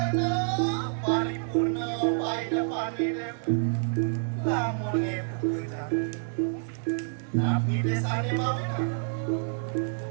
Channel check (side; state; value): left; silent; digital silence